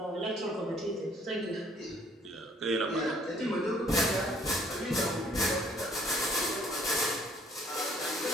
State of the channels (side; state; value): both; normal; correlation 0.60